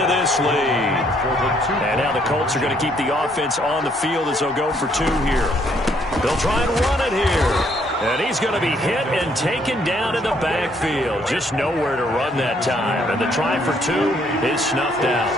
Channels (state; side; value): normal; both; correlation 0.68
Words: this lead. And now the Colts are going to keep the offense on the field as they'll go for 2 here. They'll try and run it here. And he's going to be hit and taken down in the backfield. Just nowhere to run that time. And the try for 2 is snuffed out.